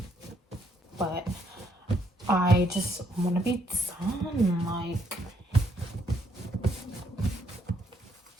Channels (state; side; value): normal; both; correlation 0.72